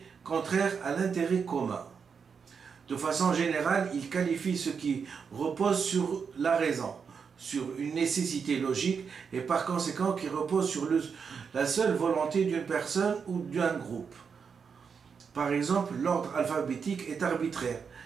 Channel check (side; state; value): left; quieter; 6.1 dB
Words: contraire à l'intérêt commun. De façon générale, il qualifie ce qui repose sur la raison, sur une nécessité logique, et par conséquent qui repose sur la seule volonté d'une personne ou d'un groupe. Par exemple, l'ordre alphabétique est arbitraire.